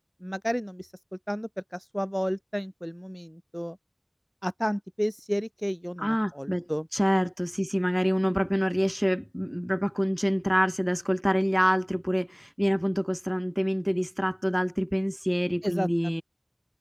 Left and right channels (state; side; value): identical; both; correlation 1.00